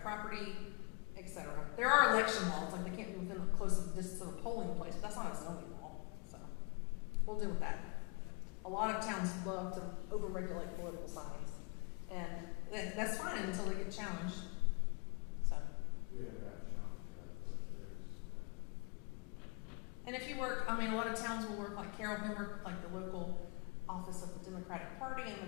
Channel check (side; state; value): right; quieter; 33.4 dB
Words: property, etc. There are election laws, like they can't be within a close distance of a polling place, but that's not a zoning law. So we'll deal with that. A lot of towns love to overregulate political signs, and that's fine until they get challenged. So. And if you work, a lot of towns will work like Carroll can work with like the local office of the Democratic Party and